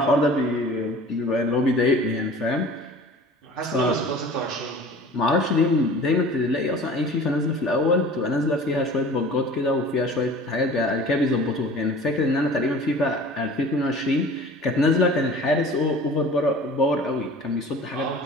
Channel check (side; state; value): both; normal; correlation 0.43